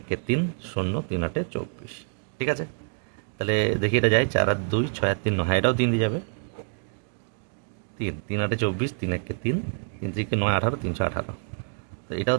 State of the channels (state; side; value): silent; left; 60 dB below the other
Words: 3 0, 3 8 24, ঠিক আছে। তাহলে দেখি এটা যায়, 4 আর 2 6 আর 3 9, হ্যাঁ এটাও 3 দিয়ে যাবে। 3 3 8 24, 3 1 3, 3 3 9 18, 318, তো এটাও